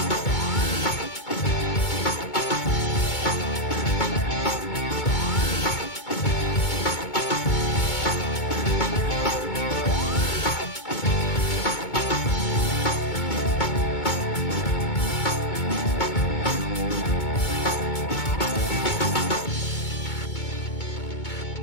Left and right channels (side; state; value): right; late; 2.2 ms